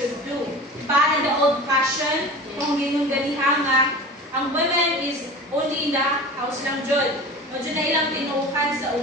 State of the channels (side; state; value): both; normal; correlation 0.35